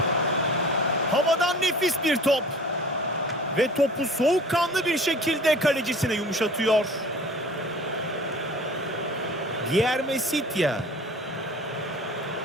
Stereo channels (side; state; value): both; normal; correlation 0.44